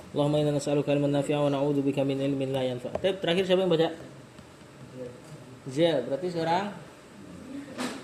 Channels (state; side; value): identical; both; correlation 1.00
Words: Allahumma inna nas'aluka ilman nafi'an wa na'udzubika min ilmin la yanfa'. Terakhir siapa yang baca? Zia, berarti sekarang